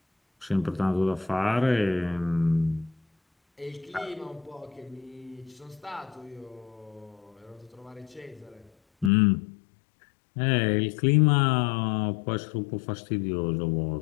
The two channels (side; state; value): right; drops out; at 9.1 s